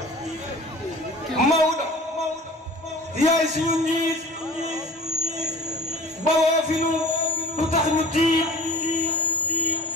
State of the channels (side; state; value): both; normal; correlation 0.43